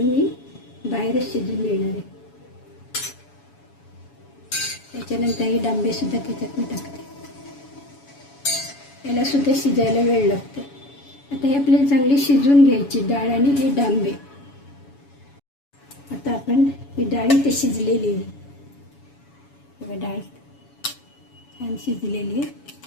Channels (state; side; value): late; right; 7.1 ms